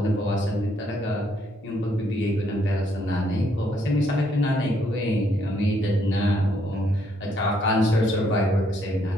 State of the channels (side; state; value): both; normal; correlation 0.71